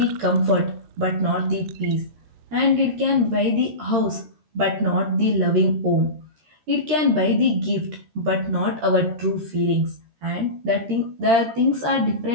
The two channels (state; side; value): late; left; 13 ms